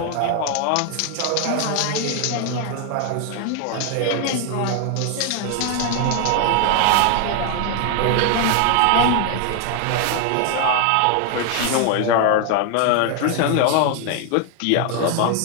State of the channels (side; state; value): both; different; correlation 0.00